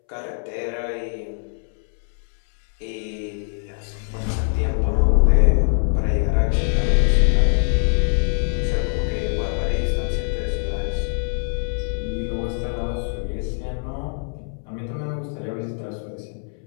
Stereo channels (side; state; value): right; silent; 64 dB below the other